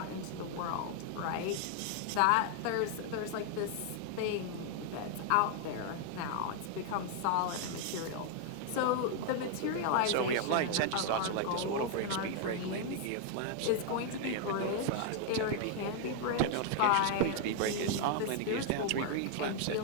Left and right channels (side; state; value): both; different; correlation 0.00